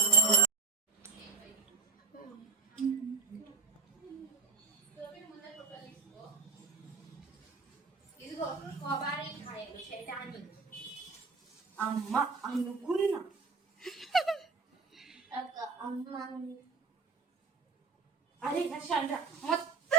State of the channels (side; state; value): left; quieter; 4.3 dB